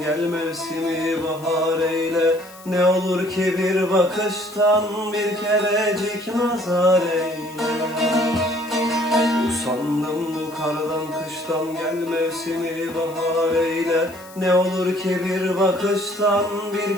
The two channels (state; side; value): noise; left; hiss, 21 dB below the sound